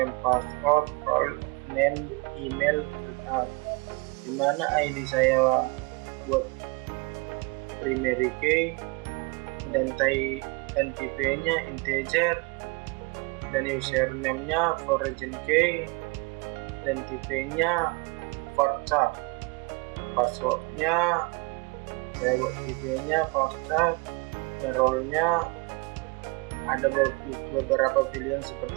password, role name, email, create, di mana ID saya buat primary key dan tipenya integer dan username-nya foreign key dan tipenya varchar. Passwordnya saya buat tipenya varchar dan role-nya ada beberapa pilihan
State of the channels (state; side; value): quieter; left; 27.1 dB